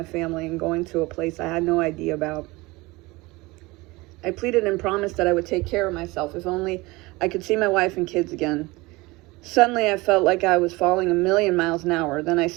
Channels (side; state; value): left; quieter; 22.4 dB